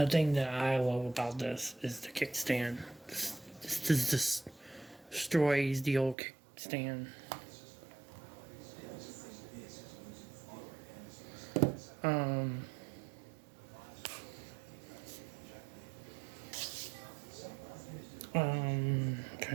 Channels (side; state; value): left; drops out; at 6.2 s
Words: thing that I love about this is the kickstand. This destroys the old kickstand.